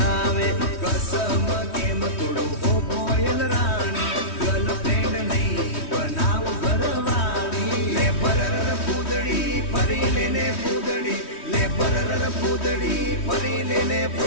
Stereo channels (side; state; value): right; late; 3.1 ms